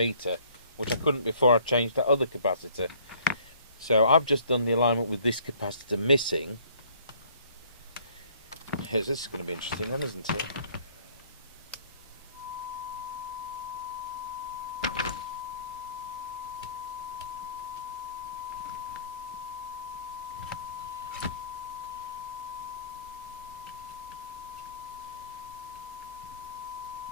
which I couldn't before I changed that other capacitor. So I've just done the alignment with this capacitor missing. This is going to be interesting then, isn't it?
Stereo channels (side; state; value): both; inverted; correlation -0.58